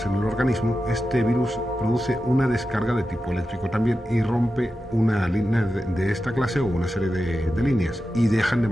en el organismo, este virus produce una descarga de tipo eléctrico también y rompe una línea de esta clase o una serie de líneas y dejan de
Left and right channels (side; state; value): both; normal; correlation 0.91